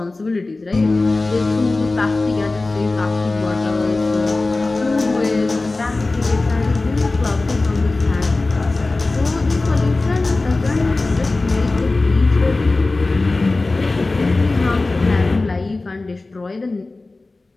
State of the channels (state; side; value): quieter; right; 3.3 dB